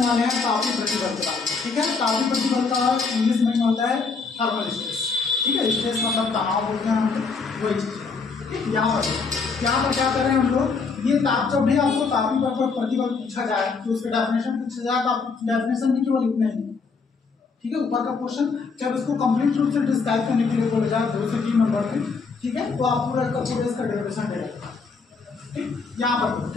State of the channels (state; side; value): quieter; right; 4.7 dB